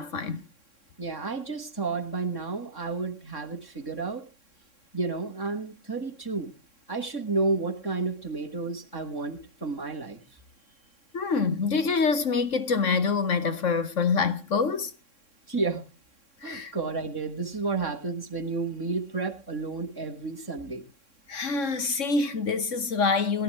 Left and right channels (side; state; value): right; late; 3.6 ms